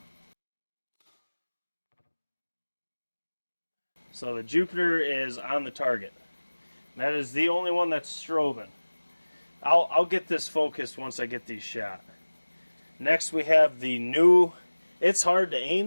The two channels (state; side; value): inverted; both; correlation -1.00